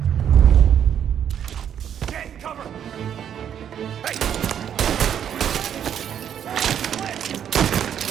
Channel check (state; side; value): quieter; left; 9.1 dB